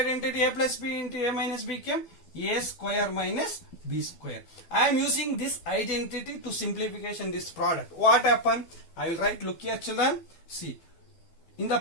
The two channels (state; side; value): late; right; 12 ms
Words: a plus b into a minus b came a square minus b square. I am using this identity to simplification this product. What happened? I will write, look here, children, see. In the